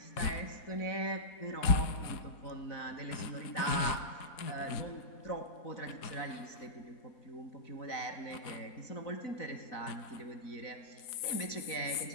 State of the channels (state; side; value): late; right; 4.0 ms